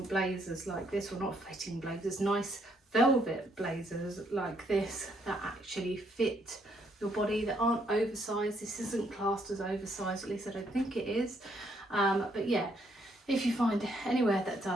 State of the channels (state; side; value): normal; both; correlation 0.71